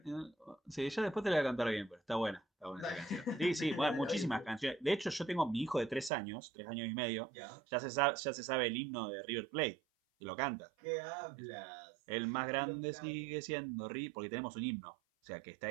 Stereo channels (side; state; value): left; drops out; at 6.1 s